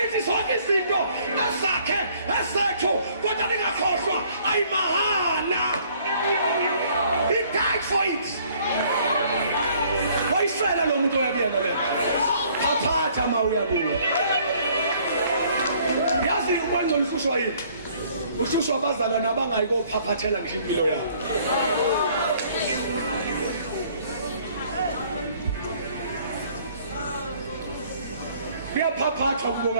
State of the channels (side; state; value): both; inverted; correlation -0.60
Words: zonke izinto esakhe esethu kodwa ningakhohlwa ayimahana. He died for it. Wayisela lo muntu oyabiyena le. Aphatha ma uyabuya. Yazi ukwenza usushwa yini? Usushwa abazalwane abangayikophaphathela ngisho impilo yabo. Kuyaphaphathwa